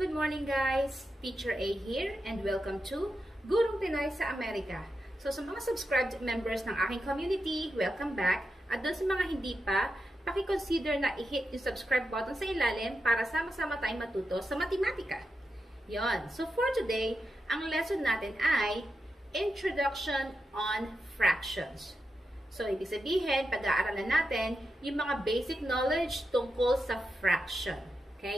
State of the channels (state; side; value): normal; both; correlation 0.88